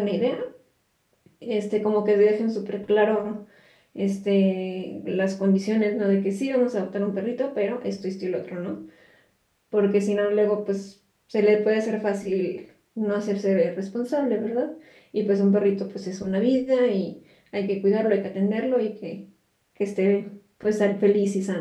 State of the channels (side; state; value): both; identical; correlation 1.00